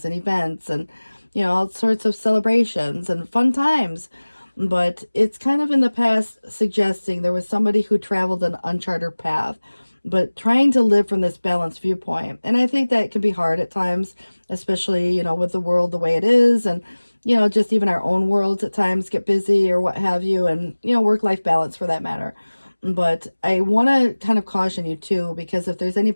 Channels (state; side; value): inverted; both; correlation -1.00